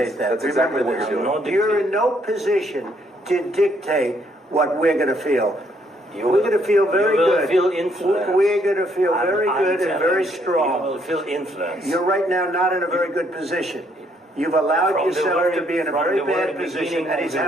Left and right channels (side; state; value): both; normal; correlation 0.70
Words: that. That's exactly what you're doing. You're in no position to dictate what we're going to feel. We're going to feel very good. You will feel influence. We're going to feel very good and very strong. You will feel influence. You're right now not in a very good position. You've allowed yourself to be in a very bad position, and he